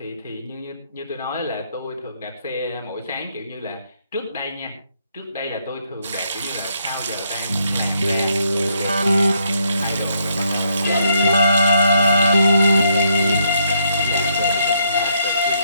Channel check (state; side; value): inverted; both; correlation -0.74